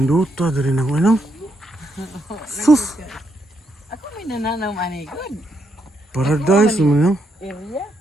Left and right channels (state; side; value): normal; both; correlation 0.78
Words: dire na ko nang. Sus. Ako may nananaw ani good. Paradise man Area.